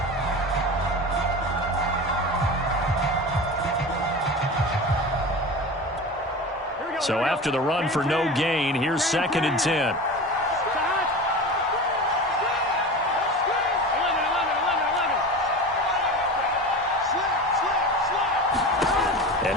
So after the run for no gain, here's 2nd and 10. And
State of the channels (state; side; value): normal; both; correlation 0.30